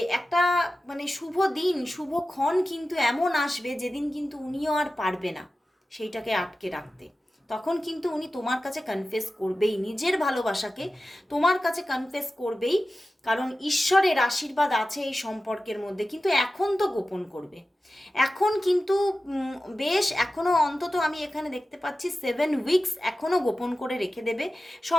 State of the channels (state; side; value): normal; both; correlation 0.94